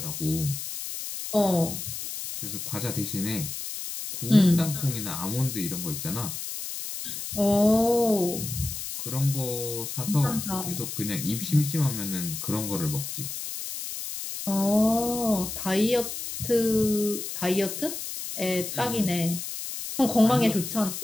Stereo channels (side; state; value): left; noise; hiss, 7 dB below the sound